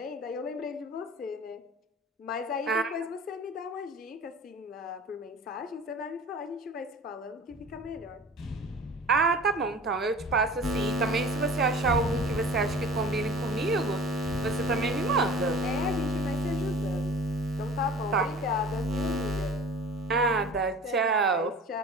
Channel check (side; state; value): both; normal; correlation 0.43